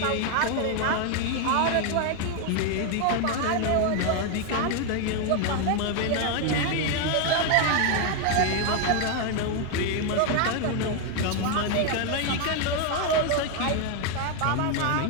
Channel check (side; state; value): both; different; correlation 0.01